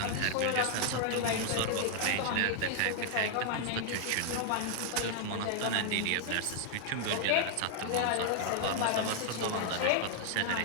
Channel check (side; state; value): both; different; correlation 0.00